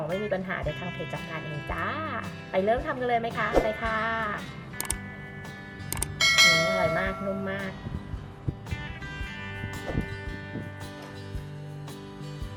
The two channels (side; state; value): both; identical; correlation 1.00